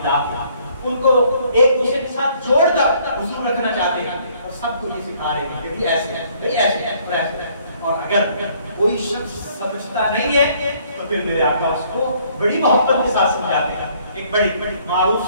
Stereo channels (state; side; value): inverted; both; correlation -0.63